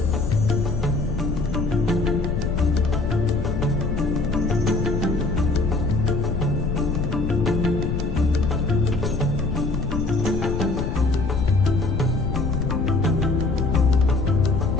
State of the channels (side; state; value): left; noise; rumble, 3 dB below the sound